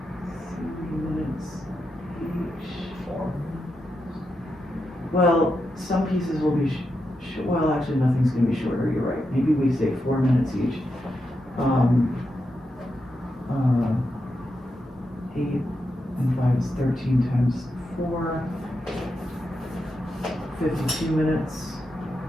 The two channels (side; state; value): both; normal; correlation 0.86